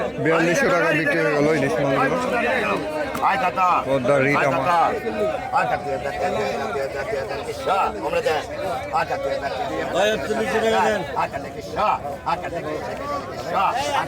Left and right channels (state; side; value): identical; both; correlation 1.00